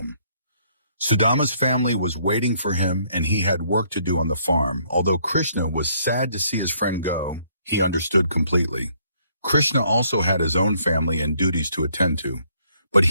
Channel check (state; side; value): inverted; both; correlation -0.67